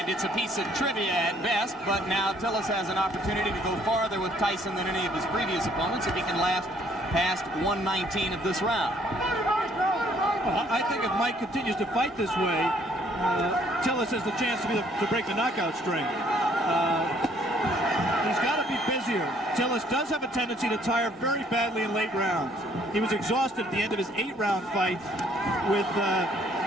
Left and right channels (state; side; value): normal; both; correlation 0.64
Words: it's a piece of trivia at best, but now Tillis has an opportunity to go farther with Tyson than any of his previous opponents if he can last past 119 of this round. Well, I think if Mike continues to fight this way, Tillis has the chance to break the knockout string. He's got to be busier. Tillis does have a tendency to tire very badly in late rounds. He was exhausted at the end of his 8-round fight with